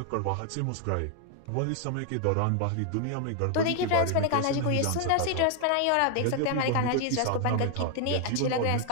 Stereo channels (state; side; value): different; both; correlation 0.00